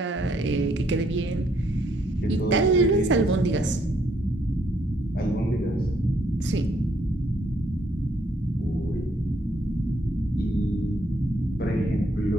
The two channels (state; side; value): normal; both; correlation 0.70